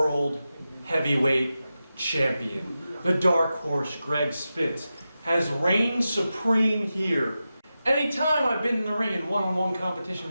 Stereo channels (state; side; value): inverted; both; correlation -0.92